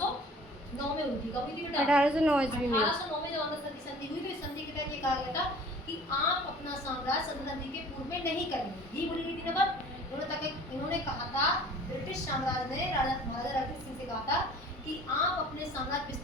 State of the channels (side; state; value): both; normal; correlation 0.48